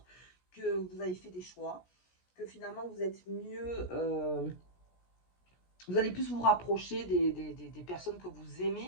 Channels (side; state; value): right; late; 17 ms